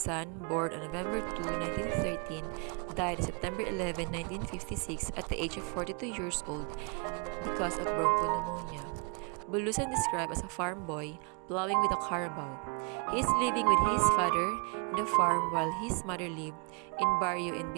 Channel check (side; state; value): left; quieter; 35.8 dB